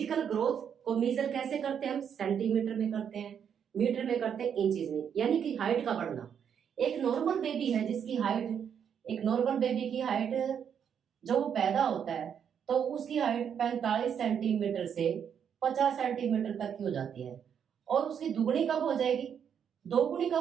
ग्रोथ को मेजर कैसे करते हैं? हम सेंटीमीटर में करते हैं, मीटर में करते हैं, इंचेस में, यानी कि हाइट का बढ़ना। एक नॉर्मल बेबी है जिसकी हाइट, एक नॉर्मल बेबी की हाइट जो वो पैदा होता है तो उसकी हाइट 45 सेंटीमीटर से 50 सेंटीमीटर तक की हो जाती है, और उसकी दुगनी कब हो जाएगी? दोगुनी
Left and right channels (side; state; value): left; quieter; 8.0 dB